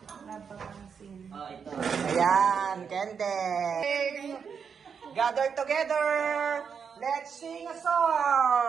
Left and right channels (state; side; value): quieter; left; 6.6 dB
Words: Ayan, Kende. Gather together. Let's sing a